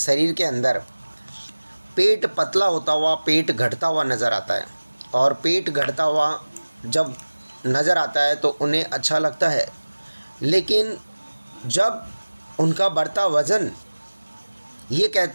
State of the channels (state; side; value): inverted; both; correlation -1.00